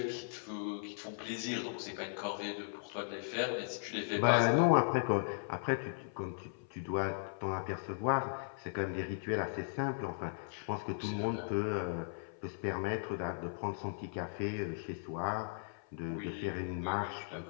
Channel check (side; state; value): right; silent; 53 dB below the other